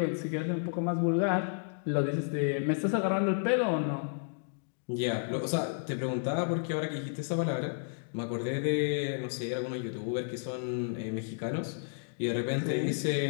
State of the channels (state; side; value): silent; right; digital silence